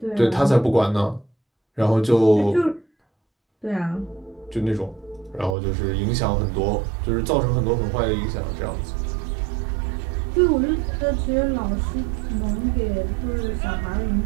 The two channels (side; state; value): left; drops out; at 5.6 s